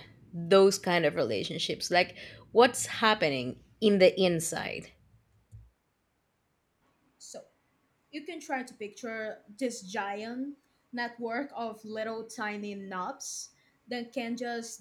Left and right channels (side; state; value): both; identical; correlation 1.00